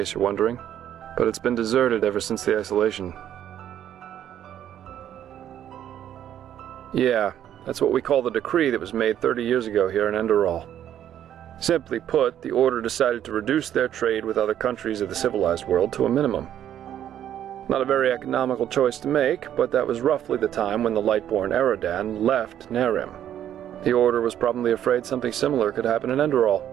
you're wondering, but it's been deserted ever since the isolation. Yeah, that's what we call the decree that was made 30 years ago here in Enderal. Simply put, the order decided to reduce their trade with other countries of the civilized world to a minimum. Not a very economical choice to make, but that was roughly the time when the Lightborn Eradan left Nerim. The order was probably afraid something similar could happen in Enderal.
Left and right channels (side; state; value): left; quieter; 10.7 dB